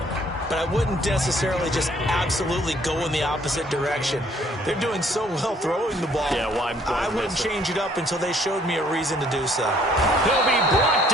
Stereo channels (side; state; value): both; normal; correlation 0.62